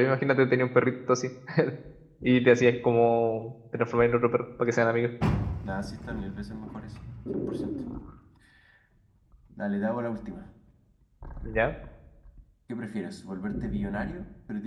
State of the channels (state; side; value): identical; both; correlation 1.00